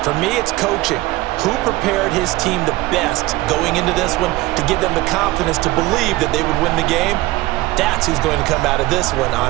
For me, it's coaching. Who prepared his team the best going into this one to give them the confidence to believe that they would win the game? That's who's going to come out of this one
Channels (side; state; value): left; quieter; 18.9 dB